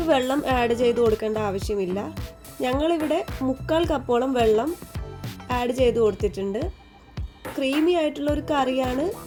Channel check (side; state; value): both; identical; correlation 1.00